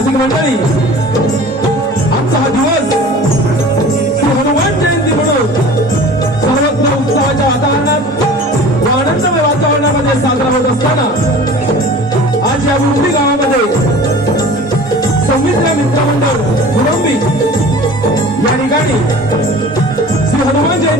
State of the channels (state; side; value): normal; both; correlation 0.41